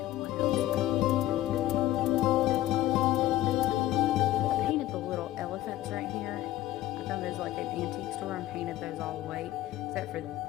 of what else. I painted the little elephants right here. I found those like an antique store and painted those all white, except for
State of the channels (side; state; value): right; quieter; 14.8 dB